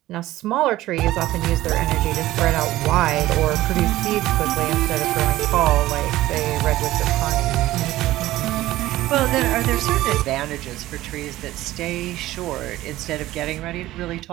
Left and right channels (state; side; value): quieter; left; 16.0 dB